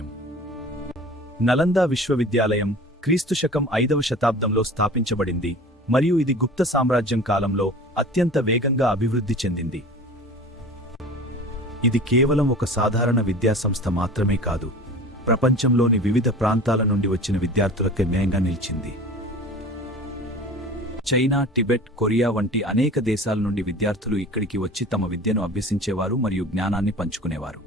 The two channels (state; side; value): normal; both; correlation 0.39